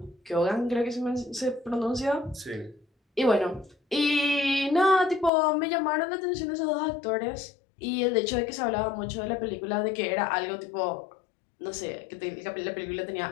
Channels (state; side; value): drops out; right; at 5.3 s